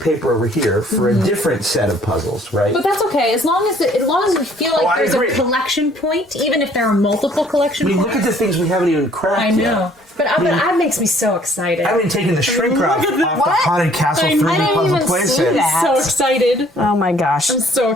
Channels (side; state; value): both; normal; correlation 0.59